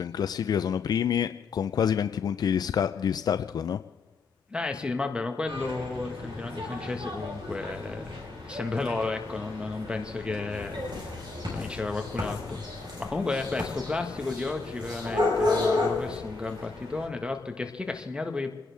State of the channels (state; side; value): quieter; right; 4.3 dB